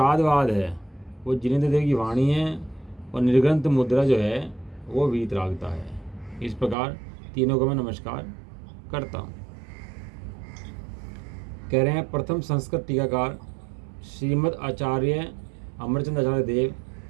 है वो जिनेंद्र देव की वाणी है और निर्ग्रंथ मुद्रा जो है वो वीतरागता है। इस प्रकार तीनों को मैं नमस्कार करता हूँ। कह रहे हैं प्रथम संस्कृत टीकाकार श्रीमद् आचार्य अमरचंद आचार्य देव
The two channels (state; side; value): drops out; left; at 6.8 s